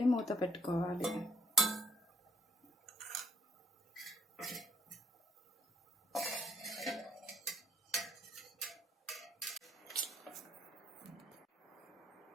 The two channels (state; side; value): normal; both; correlation 0.62